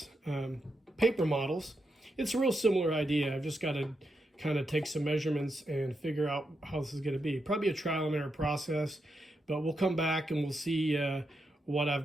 paper models, it's a real similar idea. I've just got to kind of take some measurements and figure out how this is going to be. Probably a trial and error process, but we'll come back and we'll see what I've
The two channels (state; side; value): normal; both; correlation 0.84